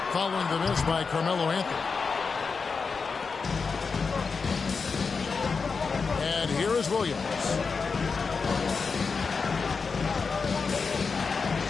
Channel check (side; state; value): right; quieter; 5.0 dB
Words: following the miss by Carmelo Anthony. And here is Williams.